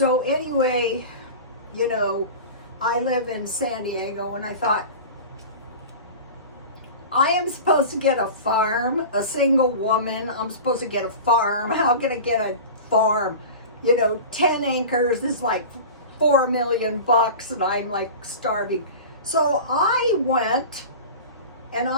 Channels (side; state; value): both; inverted; correlation -0.33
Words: anyway, I live in San Diego, and I thought, I am supposed to get a farm, a single woman. I'm supposed to get a farm. How can I get a farm? 10 acres is like $4 million, and I'm like starving. So I went, and